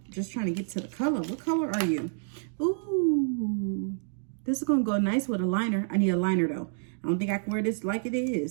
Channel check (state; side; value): silent; left; digital silence